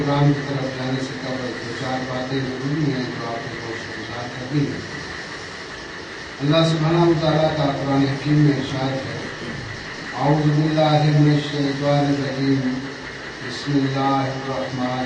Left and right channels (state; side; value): identical; both; correlation 1.00